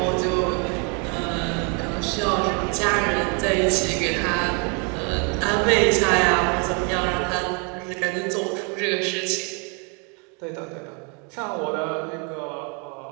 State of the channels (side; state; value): left; quieter; 35.2 dB